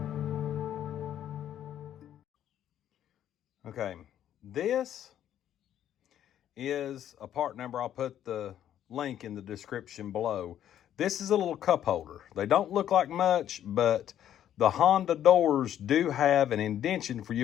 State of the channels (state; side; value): quieter; right; 10.8 dB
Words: Okay, this is a part number. I'll put the link in the description below. This is a little cup holder. They don't look like much, but the Honda doors do have an indention for you